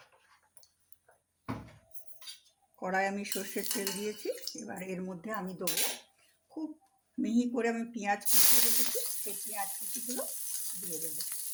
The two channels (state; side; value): identical; both; correlation 1.00